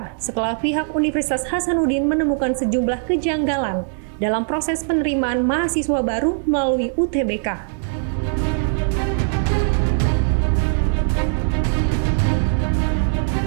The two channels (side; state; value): left; silent; digital silence